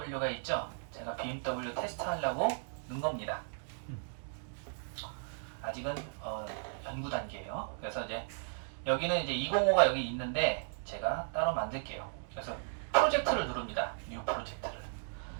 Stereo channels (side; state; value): left; silent; digital silence